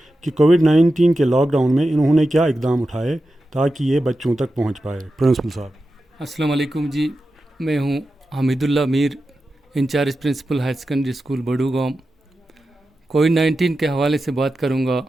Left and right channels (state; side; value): normal; both; correlation 0.91